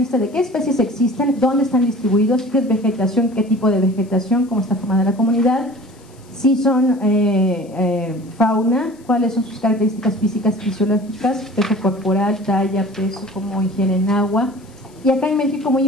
de qué especies existen, dónde están distribuidos, qué es vegetación, qué tipo de vegetación, cómo está formada la comunidad, si son fauna, cuáles son sus características físicas, fisiológicas, peso corporal, talla, peso, cómo ingieren agua. Y acá en México, muy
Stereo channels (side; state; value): left; noise; hiss, 29 dB below the sound